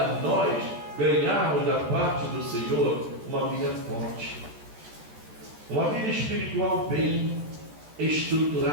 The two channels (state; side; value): late; left; 13 ms